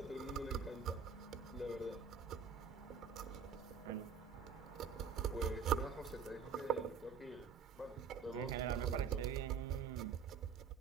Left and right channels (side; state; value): left; quieter; 6.3 dB